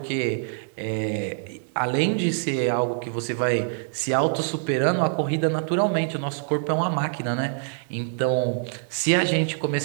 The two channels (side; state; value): left; silent; 62 dB below the other